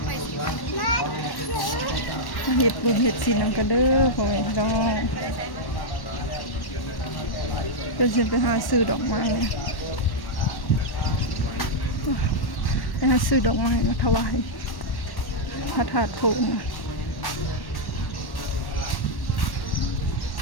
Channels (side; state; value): right; late; 1.1 ms